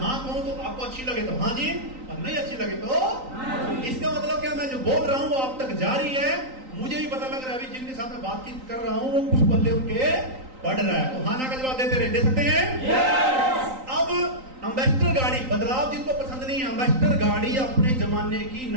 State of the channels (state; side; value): late; left; 3.9 ms